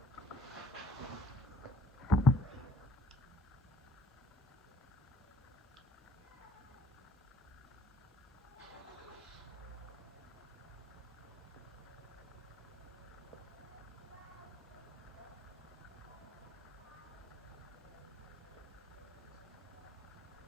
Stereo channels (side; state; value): both; normal; correlation 0.61